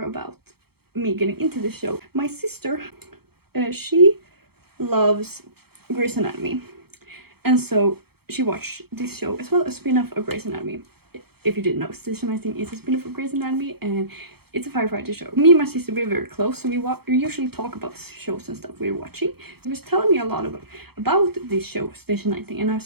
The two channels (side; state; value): left; late; 0.96 ms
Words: about me getting into the show. My sister, she loves Grey's Anatomy. And so she watched this show as well, a spin-off of Grey's Anatomy. If you didn't know, Station 19 is a spin-off of Grey's Anatomy, and it's a firefighter show. Me and my sister, we're very close, so we usually talk about the shows and stuff we're watching. She was telling me a lot about this show, Station 19, and I